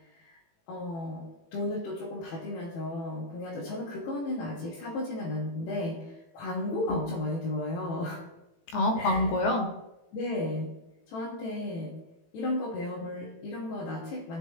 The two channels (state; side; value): late; right; 18 ms